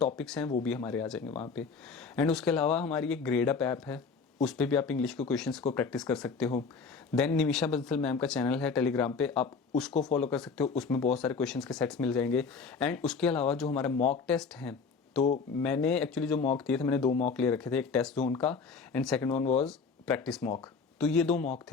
हैं वो भी हमारे आ जाएंगे वहाँ पे। एंड उसके अलावा हमारी एक ग्रेड अप ऐप है, उस पर भी आप इंग्लिश के क्वेश्चंस को प्रैक्टिस कर सकते हो। देन निमिषा बंसल मैम का चैनल है टेलीग्राम पे, आप उसको फॉलो कर सकते हो, उसमें बहुत सारे क्वेश्चंस के सेट्स मिल जाएंगे। एंड उसके अलावा जो हमारे मॉक टेस्ट हैं, तो मैंने एक्चुअली जो मॉक दिए थे, मैंने 2 मॉक ले रखे थे, एक टेस्ट जोन का and second one was practice mock. तो ये 2 मॉक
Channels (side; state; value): right; quieter; 5.1 dB